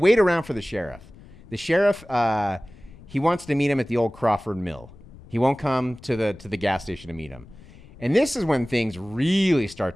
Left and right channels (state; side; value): noise; left; rumble, 21 dB below the sound